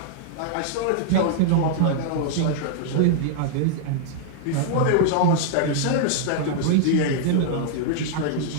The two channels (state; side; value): different; both; correlation -0.01